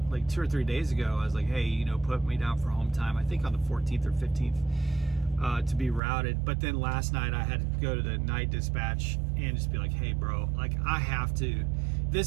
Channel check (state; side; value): drops out; left; at 6.0 s